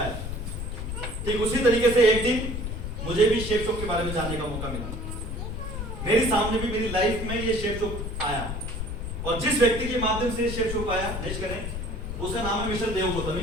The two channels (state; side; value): noise; left; rumble, 5 dB below the sound